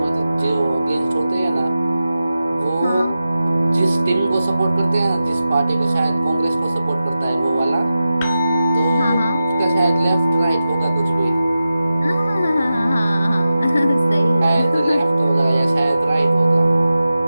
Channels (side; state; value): both; inverted; correlation -0.93